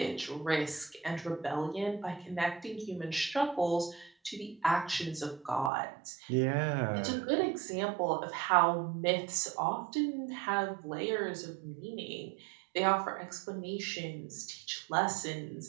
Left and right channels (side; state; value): left; drops out; at 5.7 s